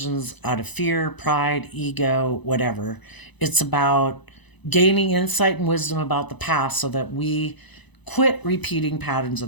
out of fear, pride, ego, whatever. It's about gaining insight and wisdom about the past so that we quit repeating patterns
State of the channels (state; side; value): late; right; 1.0 ms